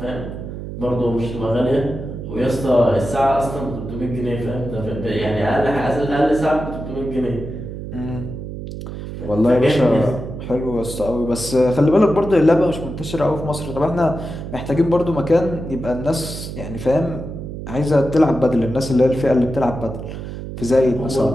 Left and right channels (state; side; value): noise; right; hum, 8 dB below the sound